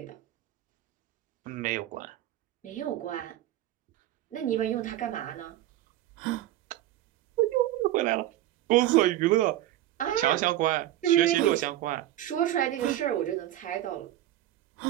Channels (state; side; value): quieter; left; 13.9 dB